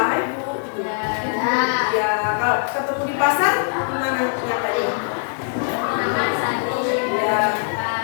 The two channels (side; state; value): right; silent; digital silence